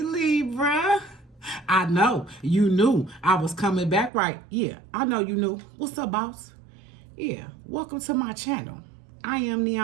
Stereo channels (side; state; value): left; drops out; at 4.1 s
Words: I know you knew I was coming back, right? Yeah, I know you knew. What's up, boss? Yeah, welcome to my channel. I am